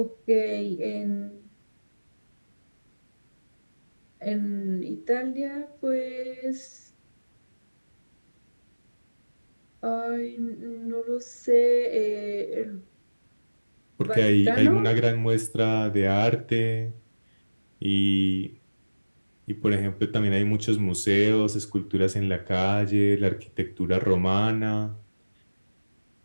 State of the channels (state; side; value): inverted; both; correlation -1.00